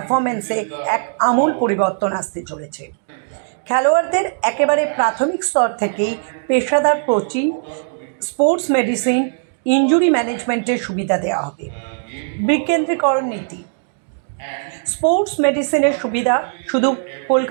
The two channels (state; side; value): silent; left; digital silence